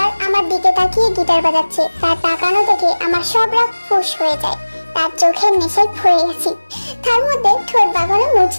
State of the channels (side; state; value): both; inverted; correlation -1.00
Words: আমার দিকে তাকিয়ে গিটার বাজাচ্ছে, তার তাকানো দেখে আমার সব রাগ ফুস হয়ে যায়। তার চোখের নেশায় পড়ে গেছি, তার মধ্যে ঠোঁট বাগানো